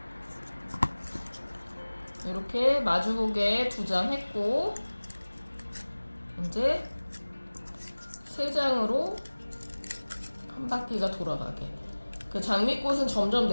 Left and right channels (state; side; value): inverted; both; correlation -1.00